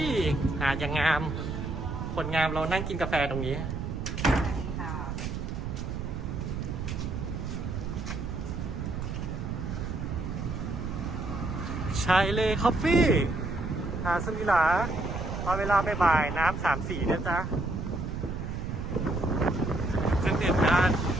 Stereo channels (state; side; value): noise; right; rumble, 4 dB below the sound